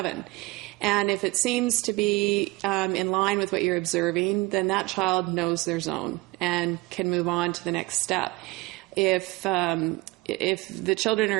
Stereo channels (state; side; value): quieter; left; 22.0 dB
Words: And if it seems to be in line with what you're observing, then that child knows their zone and can move on to the next step. If the children